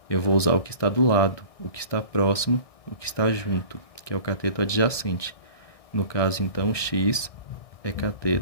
Eu vou usar o que está do lado, o que está próximo, o que está junto, que é o cateto adjacente. No caso, então, x é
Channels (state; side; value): late; right; 1.6 ms